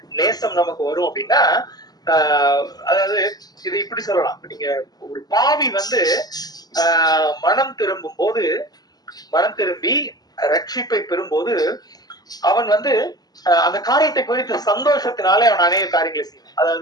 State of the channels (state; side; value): late; right; 0.19 ms